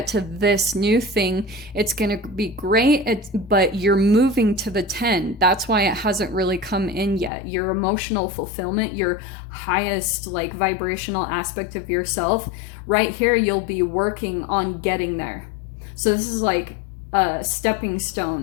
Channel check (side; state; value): right; drops out; at 7.3 s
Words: to this new thing. It's going to be great, but you're moving to the 10. That's why it hasn't really come in yet. Your emotional fulfillment, your highest like vibrational aspect of yourself, right here, you'll be working on getting there. So this is like a stepping